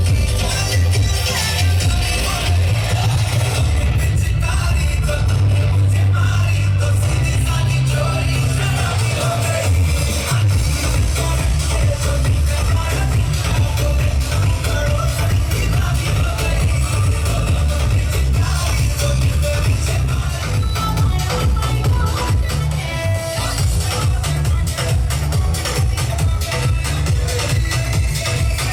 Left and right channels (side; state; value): both; identical; correlation 1.00